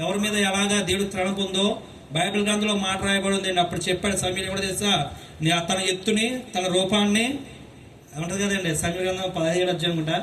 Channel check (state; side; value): identical; both; correlation 1.00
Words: ఎవరి మీద ఎలాగా దేవుడు తణుకు ఉందో బైబిల్ గ్రంథంలో మాట రాయబడి ఉందండి. అప్పుడు చెప్పాడు సమీర్ కూడా తెలుసా, తన ఎత్తుని, తన రూపాన్ని ఏమంటది కదండి సమీర గ్రంథం 17 అధ్యాయం అనుకుంటా.